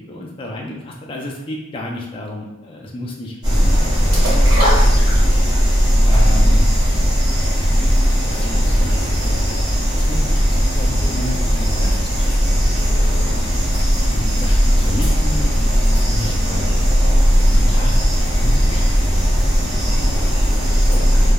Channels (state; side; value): normal; both; correlation 0.92